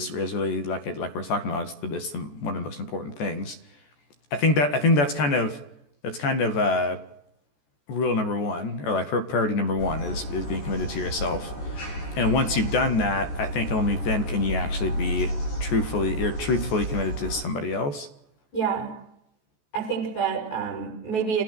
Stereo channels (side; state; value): right; late; 14 ms